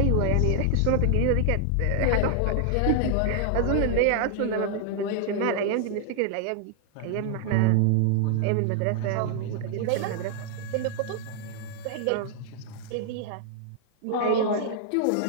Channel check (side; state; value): both; different; correlation -0.01